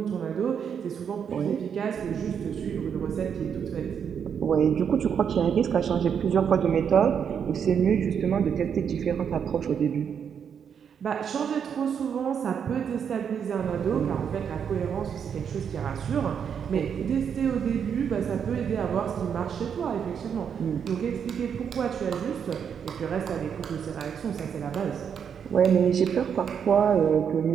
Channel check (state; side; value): quieter; left; 7.6 dB